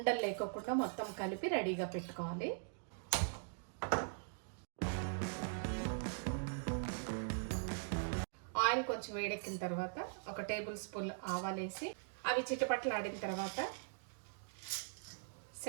లేకోకుండా మొత్తం కలిపి రెడీగా పెట్టుకోవాలి. ఆయిల్ కొంచెం వేడెక్కిన తర్వాత 1 టేబుల్ స్పూన్ ఆవాలు వేసి అవి చిటపట్లు ఆడిన తర్వాత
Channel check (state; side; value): silent; left; digital silence